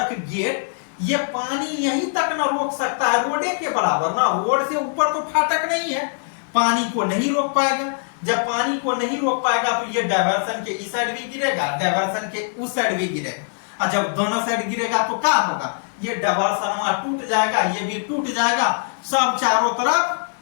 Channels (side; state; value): right; silent; digital silence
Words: गेट, ये पानी यहीं तक ना रोक सकता है, रोडे के बराबर ना, रोड से ऊपर तो फाटक नहीं है, पानी को नहीं रोक पाएगा। जब पानी को नहीं रोक पाएगा तो ये डायवर्सन के इस साइड भी गिरेगा, डायवर्सन के उस साइड भी गिरेगा, और जब दोनों साइड गिरेगा तो क्या होगा, ये डायवर्सन टूट जाएगा, ये भी टूट जाएगा, सब चारों तरफ